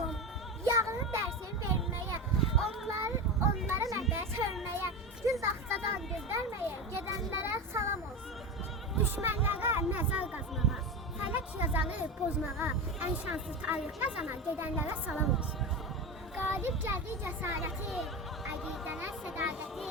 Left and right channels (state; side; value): normal; both; correlation 0.21